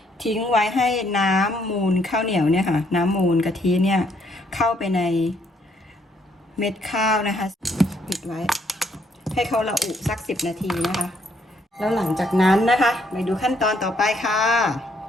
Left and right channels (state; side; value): normal; both; correlation 0.70